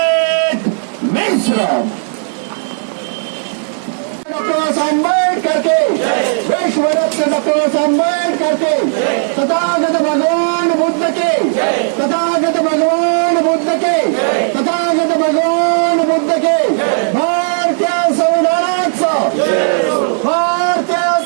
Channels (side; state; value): left; silent; digital silence